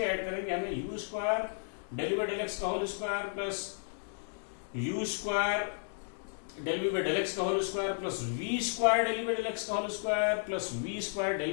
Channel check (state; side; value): silent; right; digital silence